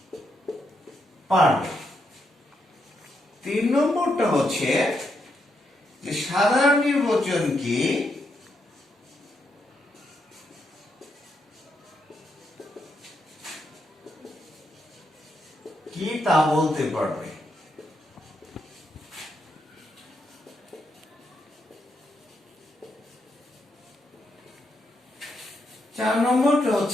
তিন নম্বরটা হচ্ছে যে সাধারণ নির্বাচন কি তা বলতে পারবে। 4 নম্বরটা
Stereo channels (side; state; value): both; normal; correlation 0.80